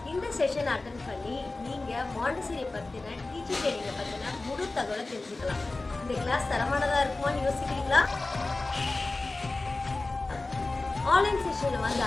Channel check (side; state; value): right; quieter; 3.2 dB